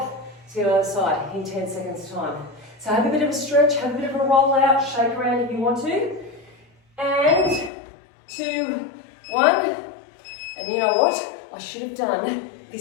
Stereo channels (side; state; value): right; drops out; at 7.7 s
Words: to the other side in 10 seconds time. So have a bit of a stretch, have a bit of a roll out, shake around if you want to. And 2, 1. And you know what? I should have done